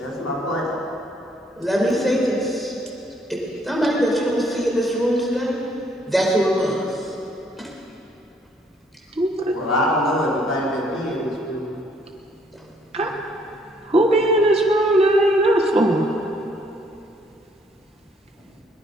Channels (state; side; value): normal; both; correlation 0.66